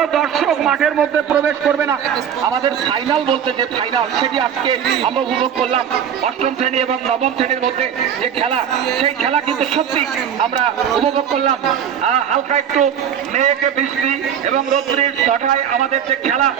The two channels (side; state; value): left; quieter; 8.7 dB